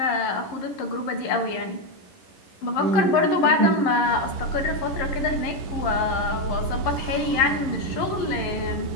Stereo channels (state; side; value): late; right; 11 ms